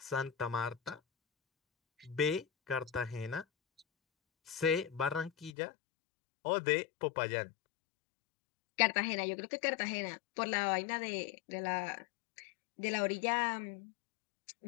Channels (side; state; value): right; drops out; at 5.5 s